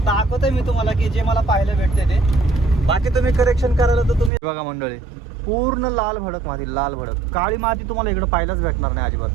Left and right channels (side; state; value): left; drops out; at 4.3 s